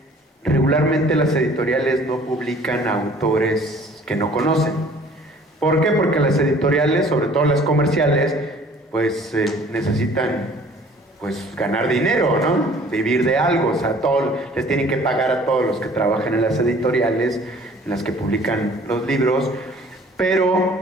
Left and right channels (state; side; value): normal; both; correlation 0.52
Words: regularmente las editoriales no publican autores que no conocen. ¿Por qué? Porque las editoriales, sobre todo las comerciales, pues necesitan pues ganar dinero, ¿no? Vivir de algo, o sea, les tienen que pagar a todos los que trabajan en las editoriales, en las que publican los libros.